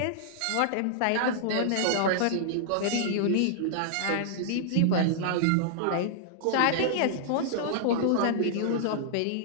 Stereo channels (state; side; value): different; both; correlation -0.01